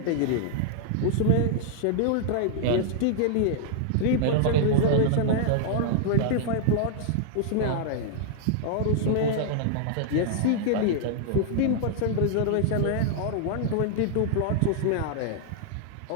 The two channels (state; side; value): different; both; correlation -0.01